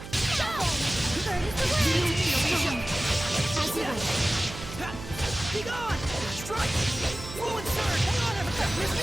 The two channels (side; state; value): right; noise; hum, 12 dB below the sound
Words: Be gone! Strike! Ruin Surge! Hang on, everyone! Miss me